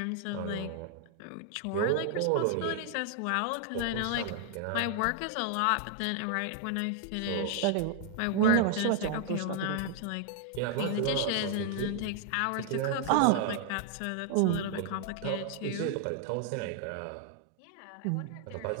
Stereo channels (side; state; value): both; different; correlation 0.00